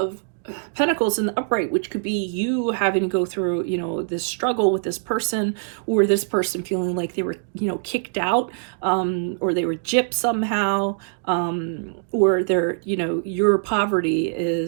Pentacles in the upright, which could be you having to go through, you know, this struggle with this person, or this person feeling like they were, you know, kicked out, or they were gypped somehow, or their, you know, your poverty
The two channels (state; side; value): silent; left; digital silence